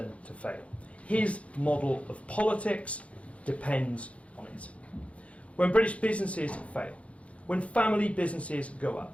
to fail. His model of politics depends on it. When British businesses fail, when family businesses go up,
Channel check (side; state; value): right; late; 0.063 ms